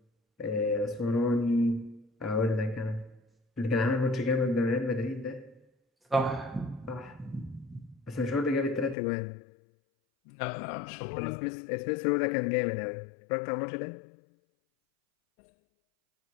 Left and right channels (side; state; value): right; drops out; at 9.0 s